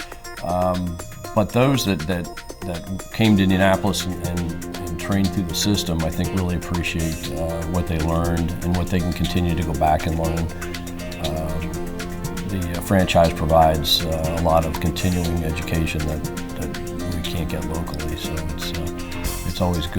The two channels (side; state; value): both; identical; correlation 1.00